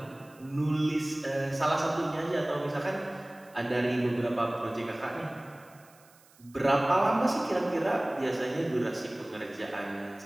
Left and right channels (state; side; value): noise; right; hiss, 28 dB below the sound